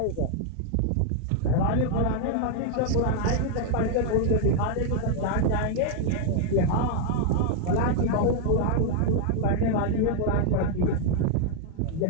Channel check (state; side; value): different; both; correlation 0.00